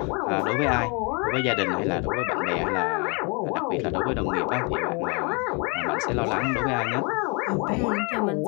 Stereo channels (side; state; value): right; quieter; 32.7 dB